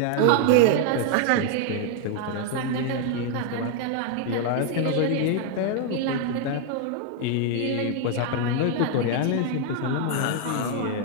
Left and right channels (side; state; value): both; different; correlation 0.00